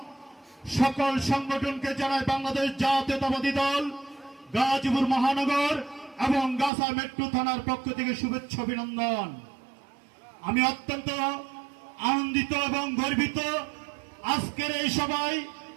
সকল সংগঠনকে জানায় বাংলাদেশ জাতীয়তাবাদী দল গাজীপুর মহানগর এবং গাছা মেট্রো থানার পক্ষ থেকে শুভেচ্ছা অভিনন্দন। আমি অত্যন্ত আনন্দিত এবং গর্বিত আজকের এই সভায়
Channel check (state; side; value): drops out; left; at 6.7 s